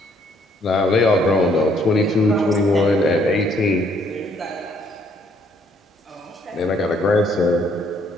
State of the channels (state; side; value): normal; both; correlation 0.66